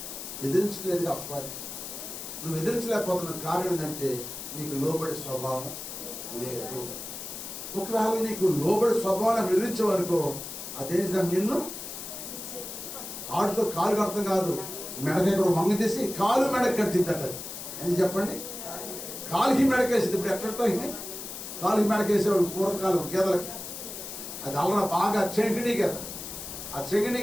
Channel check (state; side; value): noise; left; hiss, 9 dB below the sound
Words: ఎదిరించలేదు అపవాది. నువ్వు ఎదిరించలేకపోతున్న కారణం ఏంటంటే నీకు లోబడి స్వభావం లేదు. ఒకవేళ నీకు లోబడి స్వభావాన్ని ఎదిరించేవనుకో అదేం నిన్ను ఆడుతో కాలు కడతాం కాదు, మెడక ఇక్కడ వంగ తీసి కాలు మెడకు కట్టిద్దట. ఎందుకు చెప్పండి? కాలుకి మెడకేసింది. ఇప్పుడు ఎట్లా కాలుకి మెడకేసేవాడు పూర్వకాలం గేదలకి. అది అల్లన బాగా చెంకిణీ గేద. ఆ చెంకిణీ